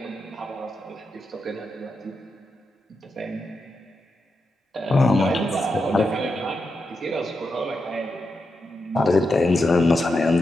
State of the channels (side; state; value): both; normal; correlation 0.87